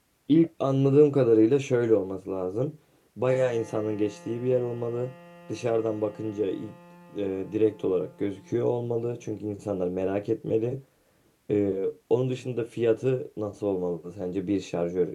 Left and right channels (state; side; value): identical; both; correlation 1.00